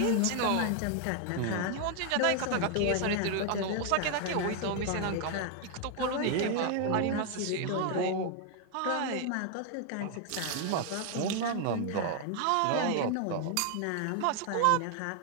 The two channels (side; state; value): both; different; correlation 0.00